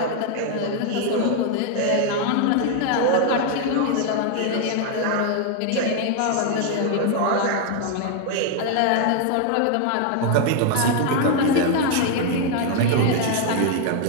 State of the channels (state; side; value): different; both; correlation 0.00